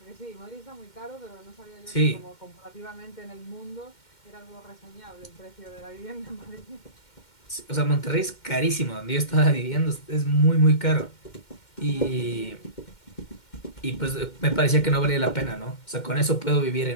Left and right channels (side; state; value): right; late; 2.1 ms